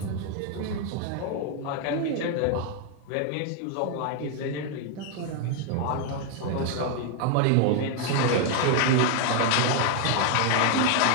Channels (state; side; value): different; both; correlation 0.00